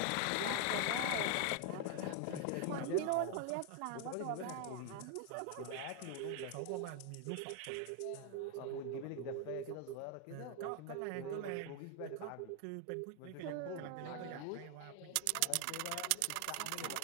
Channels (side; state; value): both; different; correlation 0.00